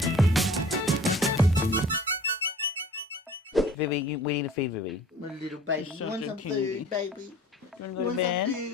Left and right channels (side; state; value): both; normal; correlation 0.47